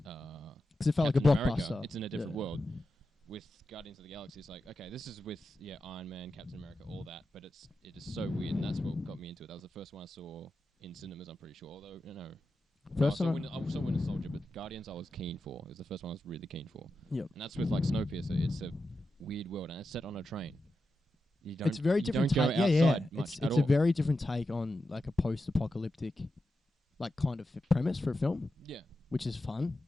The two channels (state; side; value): normal; both; correlation 0.89